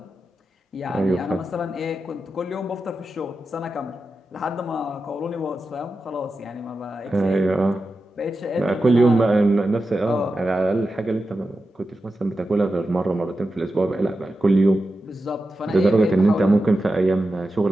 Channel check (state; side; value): normal; both; correlation 0.91